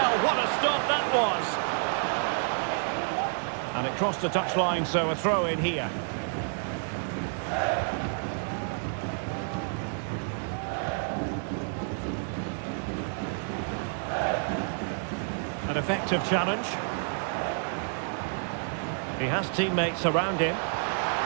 what a stop that was. And it crossed the touchline, so a throw in here. An effective challenge. He has teammates around him.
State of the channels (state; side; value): silent; left; 58 dB below the other